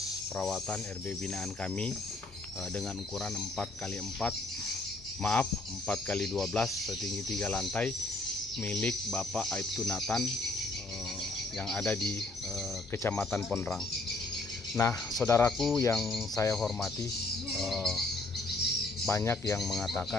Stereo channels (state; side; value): quieter; right; 3.0 dB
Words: perawatan RB binaan kami dengan ukuran 4x12 setinggi 3 lantai milik Bapak Aibtu Nathan yang ada di Kecamatan Pondrang. Nah, saudaraku yang saya hormati, banyak yang mengatakan